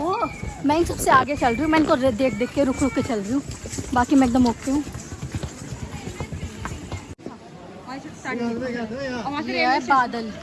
मैं इन सबसे आगे चल रही हूँ, मैं इनको देख देख के रुक रुक के चल रही हूँ, बाकी मैं एकदम ओके हूँ। ये है बादल,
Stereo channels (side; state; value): both; identical; correlation 1.00